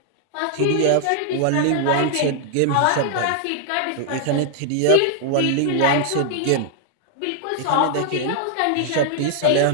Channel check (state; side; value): different; both; correlation 0.00